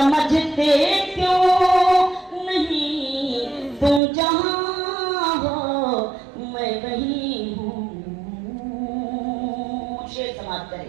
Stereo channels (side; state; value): left; drops out; at 4.0 s